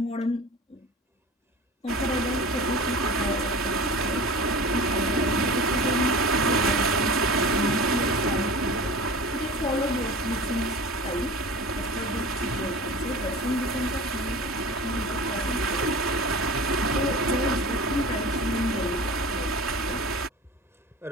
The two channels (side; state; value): both; normal; correlation 0.36